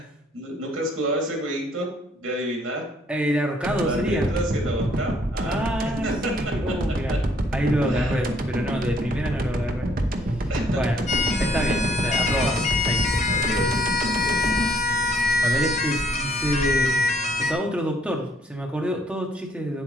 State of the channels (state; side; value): normal; both; correlation 0.65